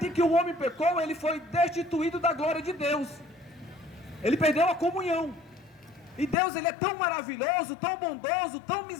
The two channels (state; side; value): drops out; right; at 6.4 s